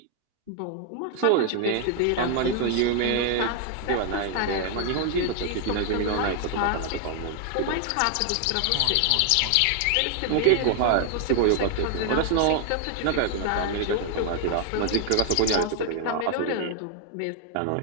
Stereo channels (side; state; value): both; different; correlation 0.00